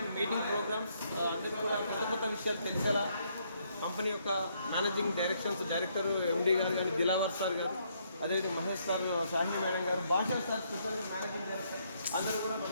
మీటింగ్ ప్రోగ్రామ్స్ అందరూ కూడా కొత్త విషయాలు తెలిసేలా కంపెనీ యొక్క మేనేజింగ్ డైరెక్టర్ MD గారు కానీ దిలావర్ సార్ గారు, అదేవిధంగా మహేష్ సార్, షాహిని మేడం గారు, భాషా సార్, స్పెషల్గా మేనేజింగ్ డైరెక్టర్ అందరూ కూడా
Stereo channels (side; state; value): both; inverted; correlation -0.72